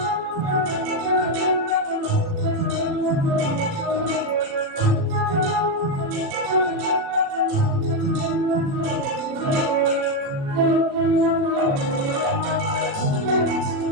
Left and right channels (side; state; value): left; late; 37 ms